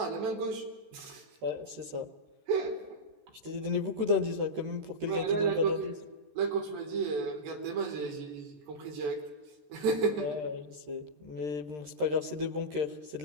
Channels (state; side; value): late; left; 13 ms